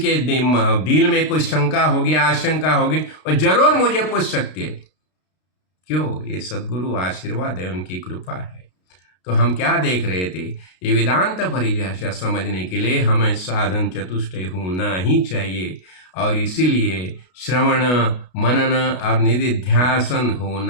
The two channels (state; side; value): late; right; 32 ms